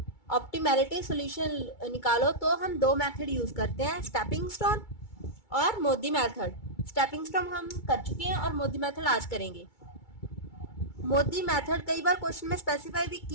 ऑप्टिमैलिटी सोल्यूशन निकालो, तो हम दो मेथड यूज करते हैं, स्टेपिंग स्टोन और मोदी मेथड। स्टेपिंग स्टोन हम कर चुके हैं और मोदी मेथड आज करेंगे। मोदी मेथड कई बार क्वेश्चन में स्पेसिफाई भी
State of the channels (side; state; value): right; late; 2.3 ms